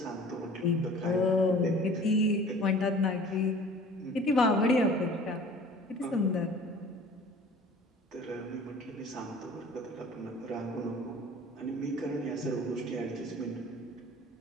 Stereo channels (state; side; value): normal; both; correlation 0.46